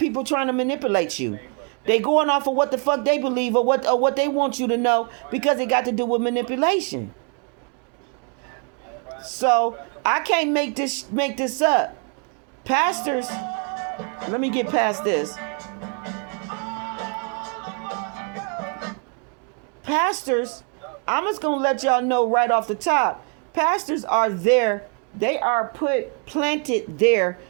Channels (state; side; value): quieter; left; 38.0 dB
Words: trying to manipulate you. They going off of what the fuck they believe or what they want you to know, because it got to do with manipulation. So I can't make this up. Pastors, let me get past this. Pastors, I'm just gonna let y'all know right off the top. Pastors are there. They are planted there